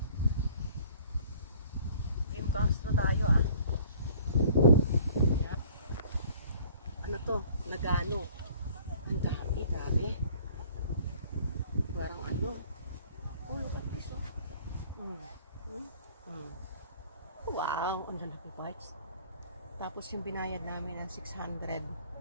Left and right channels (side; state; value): both; inverted; correlation -0.52